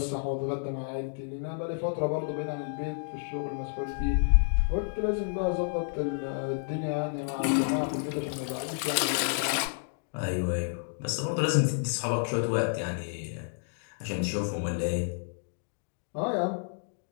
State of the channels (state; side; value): silent; right; digital silence